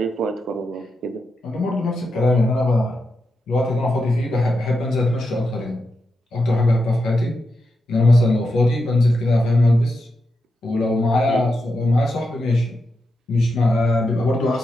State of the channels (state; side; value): normal; both; correlation 0.87